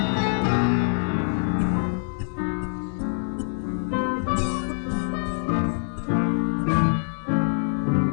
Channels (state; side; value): silent; right; digital silence